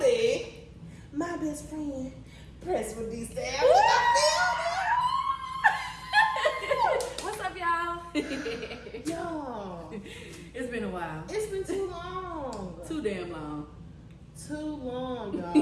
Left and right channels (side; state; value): both; identical; correlation 1.00